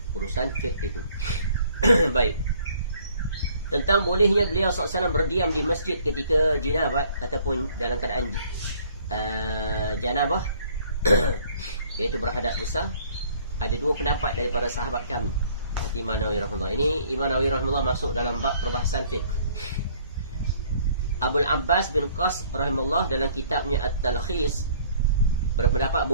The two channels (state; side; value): inverted; both; correlation -0.59